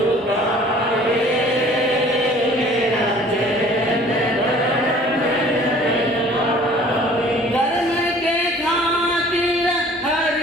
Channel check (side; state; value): both; normal; correlation 0.51